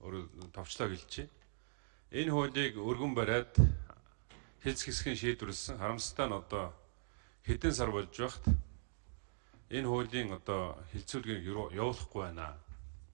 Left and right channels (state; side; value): silent; left; digital silence